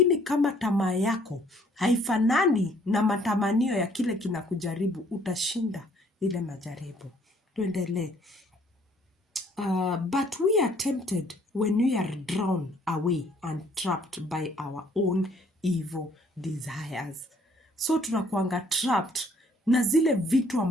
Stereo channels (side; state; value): both; normal; correlation 0.61